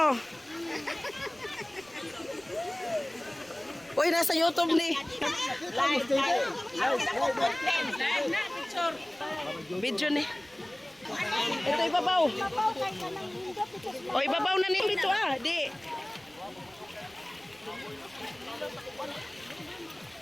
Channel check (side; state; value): right; noise; rumble, 29 dB below the sound